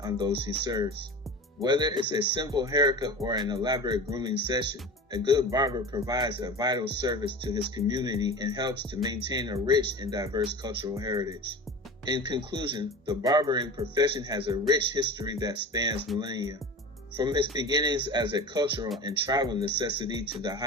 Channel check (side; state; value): both; normal; correlation 0.33